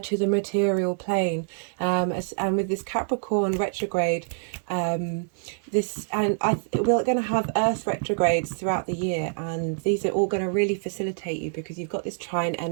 to the material plane, and with this Capricorn retrograde, we're going to have Earth retrogrades throughout the year, and these are all going to really facilitate you because you've got this trine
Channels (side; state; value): left; silent; 61 dB below the other